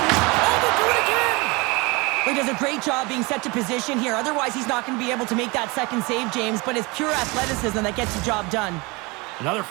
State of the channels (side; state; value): left; quieter; 26.0 dB